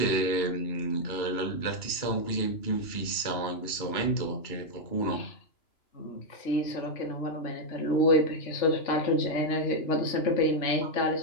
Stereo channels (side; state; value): right; late; 2.9 ms